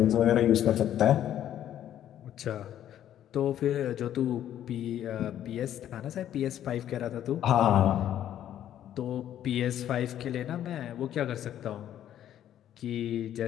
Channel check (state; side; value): quieter; right; 11.1 dB